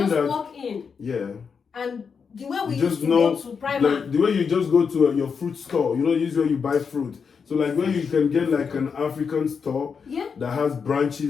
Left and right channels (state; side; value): quieter; right; 6.0 dB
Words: just that walk in and the way we you used just to know, go to Primark, like the way you just go to your fruit store, you know, usually where you buy fruit. So like where you can get like an African store that has